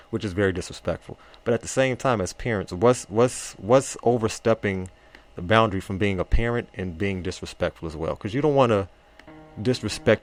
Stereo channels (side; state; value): both; identical; correlation 1.00